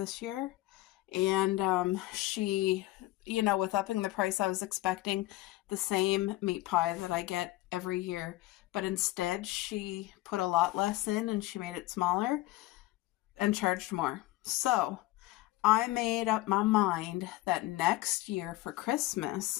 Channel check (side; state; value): right; quieter; 17.7 dB